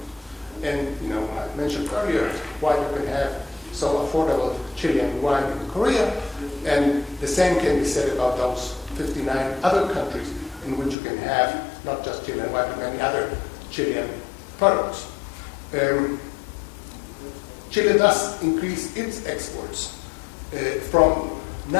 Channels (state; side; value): drops out; right; at 11.0 s